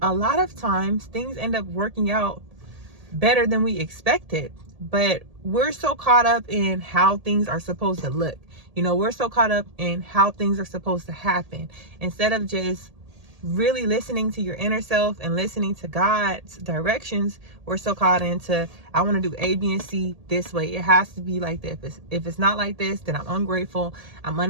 a lot of times, things end up working out better than we expected. But we're so caught up in how things are supposed to look. We're so caught up in how things are supposed to happen, instead of just really listening to your inner self and listening to God's directions. We're so caught into, I want to do A, B, and C this way. It has to be like this. If it's not like this, then I'm ungrateful, I'm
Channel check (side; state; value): left; late; 1.8 ms